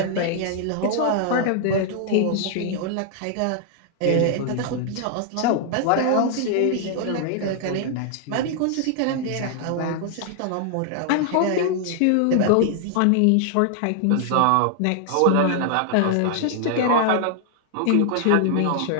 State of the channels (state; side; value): different; both; correlation 0.00